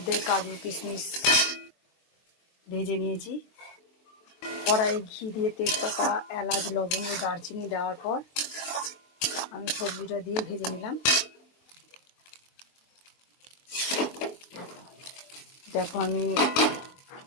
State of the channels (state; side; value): late; right; 23 ms